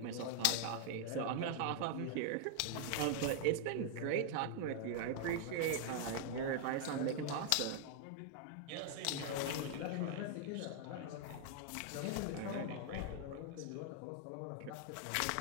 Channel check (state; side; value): different; both; correlation -0.01